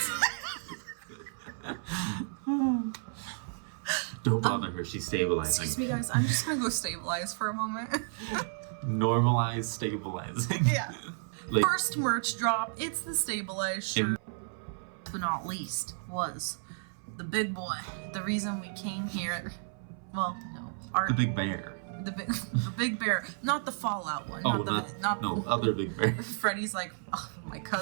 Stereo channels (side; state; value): left; silent; 56 dB below the other